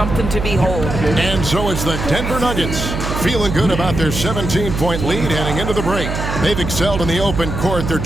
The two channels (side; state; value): right; noise; hum, 4 dB below the sound